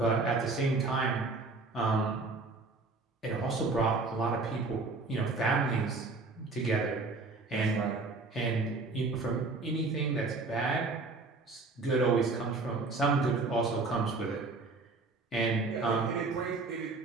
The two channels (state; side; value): quieter; left; 3.6 dB